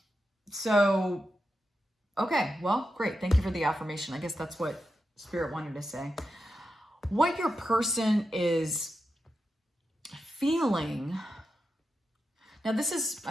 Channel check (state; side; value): normal; both; correlation 0.88